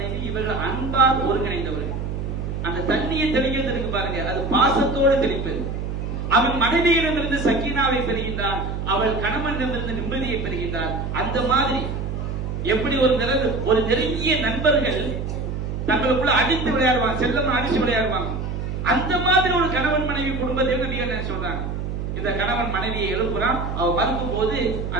இவர்கள் அன்பால் ஒருங்கிணைந்தவர்கள். அந்த தண்ணியை தெளிக்கிறது இருக்கு பாருங்க, அது பாசத்தோடு தெளிப்பது. அவன் மனைவியிடமிருந்து சக்கீனாவை பெறுகின்றான், அவள் கணவனிடமிருந்து நிம்மதியை பெறுகின்றாள். அந்த மாதிரி எப்படி ஒரு நெருங்கிய நண்பர்கள் தங்களுக்குள்ள அடித்து விளையாடுவாங்க, செல்லமா அடிச்சு விளையாடுவாங்க, அந்த மாதிரி ஒரு கணவன் மனைவி குடும்பத்தை நபி என்ன சொல்றாங்க, இந்த கணவன் மனைவியை எழுப்புறான், அவன் மறுக்கும் போது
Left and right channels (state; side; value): noise; right; hum, 4 dB below the sound